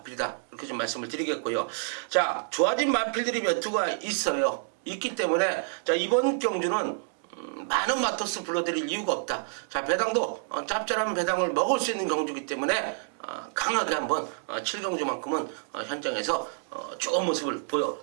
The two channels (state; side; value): silent; left; digital silence